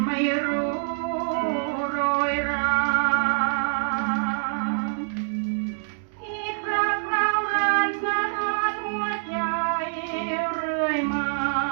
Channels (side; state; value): left; silent; digital silence